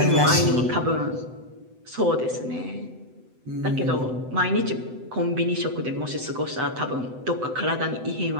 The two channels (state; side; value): late; left; 7.9 ms